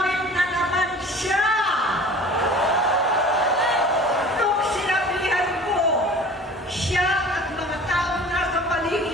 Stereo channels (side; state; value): both; normal; correlation 0.43